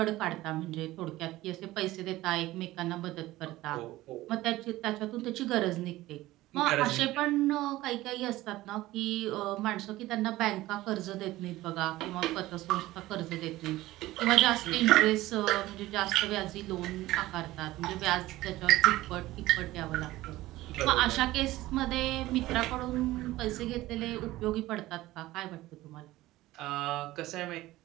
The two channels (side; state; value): left; quieter; 17.1 dB